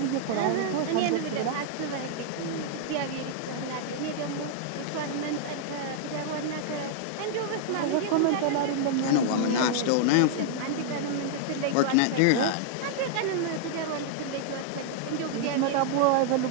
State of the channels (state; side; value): different; both; correlation -0.01